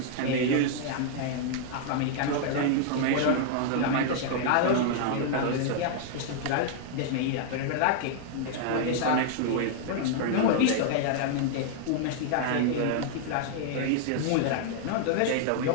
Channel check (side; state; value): both; different; correlation -0.01